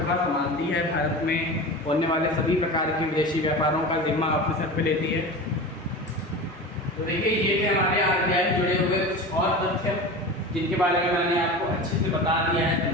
संभालती है, भारत में होने वाले सभी प्रकार के विदेशी व्यापारों का जिम्मा अपने सर पे लेती है। तो देखिए ये थे हमारे आरबीआई जुड़े हुए कुछ और तथ्य जिनके बारे में मैंने आपको अच्छे से बता दिया है,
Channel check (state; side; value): normal; both; correlation 0.31